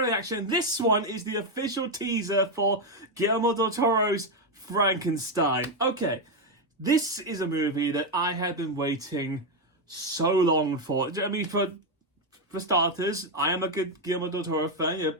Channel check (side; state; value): both; normal; correlation 0.05